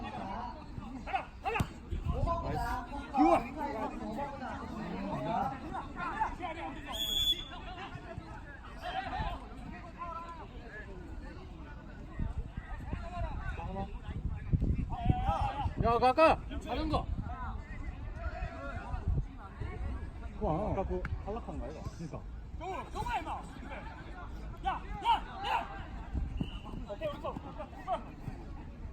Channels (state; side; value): identical; both; correlation 1.00